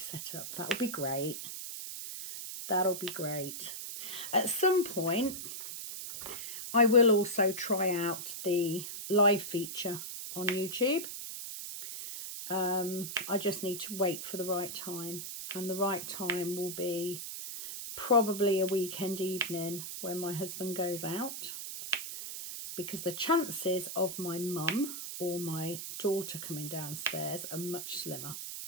That'll be great. That'll be great. At some point, I will also try out the live feature on YouTube. I just need to wait for the right time, and the right time will be probably a weekend evening when my husband goes out, because the chances of my mum or my daughter coming downstairs are much slimmer.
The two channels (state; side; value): noise; right; hiss, 7 dB below the sound